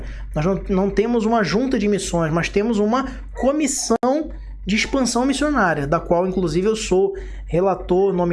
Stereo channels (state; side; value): identical; both; correlation 1.00